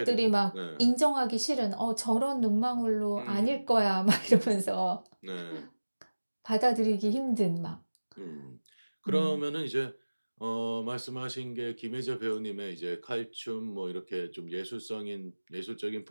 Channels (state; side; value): inverted; both; correlation -1.00